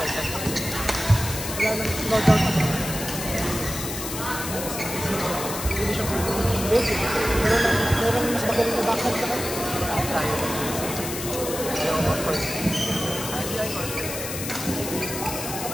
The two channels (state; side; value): noise; left; hiss, 6 dB below the sound